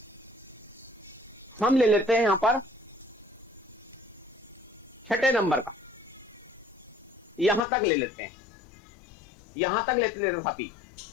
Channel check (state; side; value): drops out; right; at 7.6 s